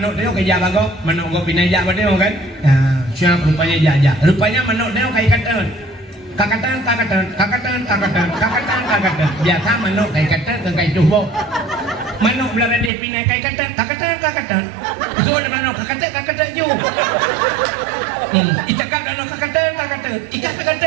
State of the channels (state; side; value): drops out; left; at 12.9 s